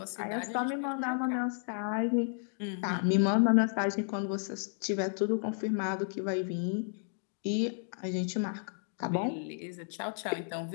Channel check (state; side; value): silent; right; digital silence